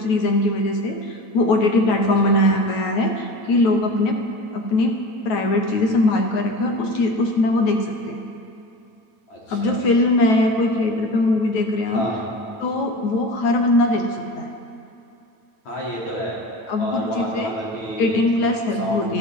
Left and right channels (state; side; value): late; right; 9.3 ms